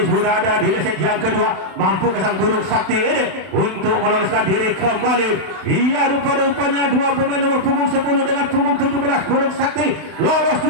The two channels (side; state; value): left; late; 32 ms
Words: sudah ada di leset yang kedua. Mampukah Sang Burung Sakti ini untuk meloloskan diri kembali? Iya, rupa-rupanya 2 pemain nomor punggung 10 dengan punggung 17 Burung Sakti lolos